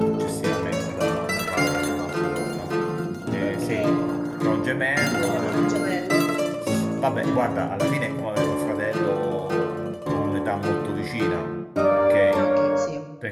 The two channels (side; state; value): both; identical; correlation 1.00